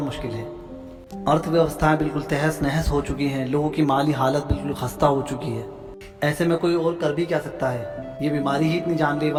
मुश्किल है। अर्थव्यवस्थाएं बिल्कुल तहस नहस हो चुकी हैं, लोगों की माली हालत बिल्कुल खस्ता हो चुकी है। ऐसे में कोई और कर भी क्या सकता है? ये बीमारी ही इतनी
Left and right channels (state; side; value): identical; both; correlation 1.00